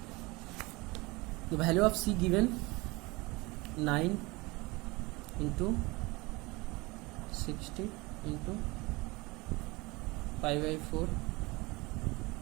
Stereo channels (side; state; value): left; quieter; 23.7 dB